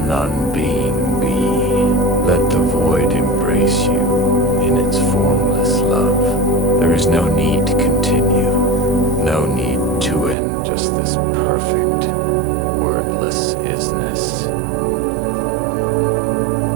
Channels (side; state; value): left; drops out; at 10.4 s